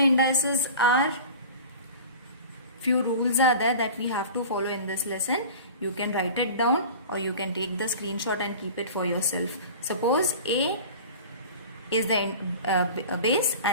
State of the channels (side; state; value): both; inverted; correlation -0.38